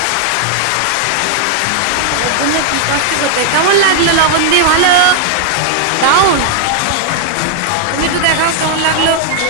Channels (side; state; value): both; different; correlation 0.00